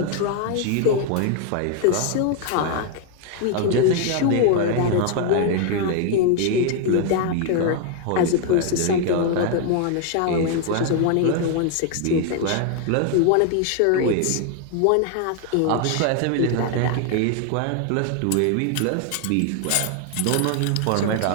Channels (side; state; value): both; different; correlation 0.00